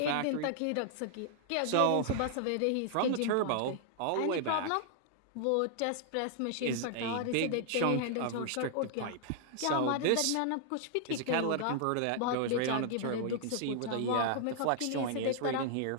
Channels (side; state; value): both; different; correlation 0.00